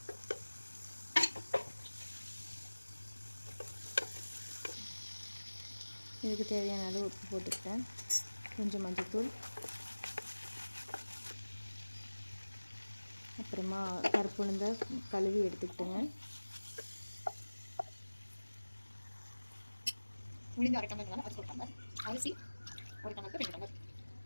இதுக்கு தேவையான அளவு உப்பு போட்டுக்கிட்டேன். கொஞ்சம் மஞ்சள்தூள், அப்புறமா கருப்பு உளுந்தை கழுவி எடுத்துக்கிட்டேங்க. உளுந்து 1/2 டம்ளர், அது போட்டாங்க. அரிசி 1 டம்ளருக்கு 2 டம்ளர்.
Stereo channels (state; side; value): inverted; both; correlation -1.00